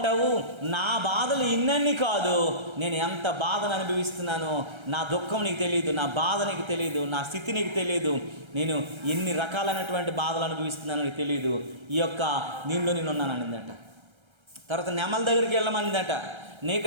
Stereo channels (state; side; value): late; left; 1.3 ms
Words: నా బాధలు ఇన్నన్నీ కాదు, నేను ఎంత బాధను అనుభవిస్తున్నానో నా దుఃఖం నీకు తెలియదు, నా బాధ నీకు తెలియదు, నా స్థితి నీకు తెలియదు, నేను ఎన్ని రకాలైనటువంటి బాధలు అనుభవిస్తున్నానో నీకు తెలియదు, ఈ యొక్క నీళ్ళు నేనున్నాను అనిందట. తర్వాత నెమల దగ్గరికి వెళ్ళమనిందట.